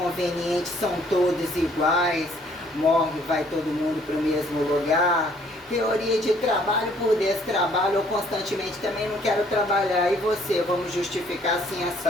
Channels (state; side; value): normal; both; correlation 0.62